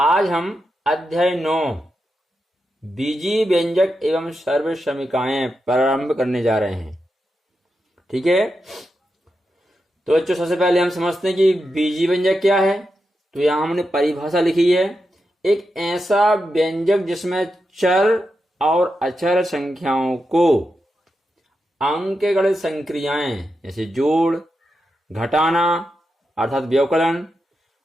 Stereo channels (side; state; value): both; normal; correlation 0.87